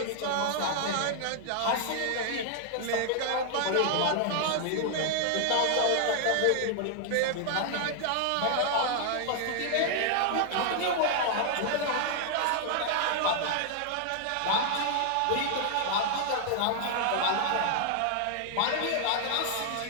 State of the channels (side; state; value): both; different; correlation 0.00